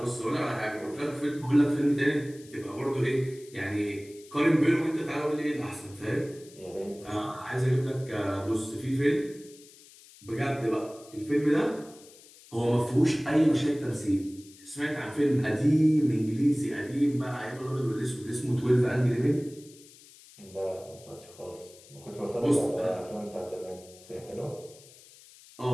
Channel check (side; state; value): left; noise; hiss, 22 dB below the sound